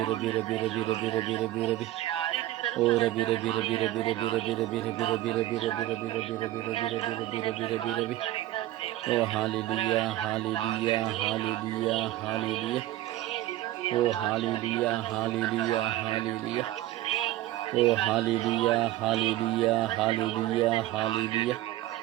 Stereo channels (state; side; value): quieter; left; 15.3 dB